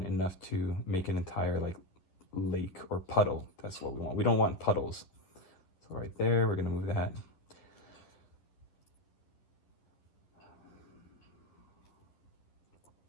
enough to make an entire like lake or puddle. That's what we want. We don't want puddles. So right there, we're gonna move that.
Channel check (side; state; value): right; late; 11 ms